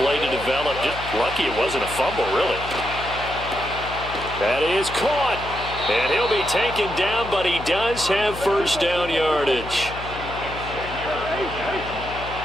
play to develop. Just lucky it wasn't a fumble, really. That is caught. And he'll be taken down, but he does have 1st down yardage.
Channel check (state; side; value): noise; left; hum, 12 dB below the sound